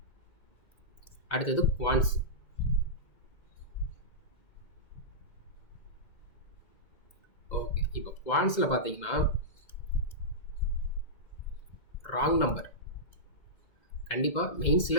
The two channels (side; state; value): right; late; 2.0 ms